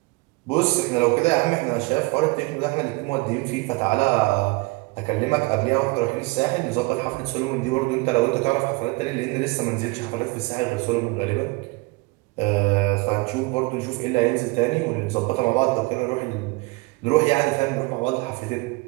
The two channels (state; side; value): quieter; left; 24.7 dB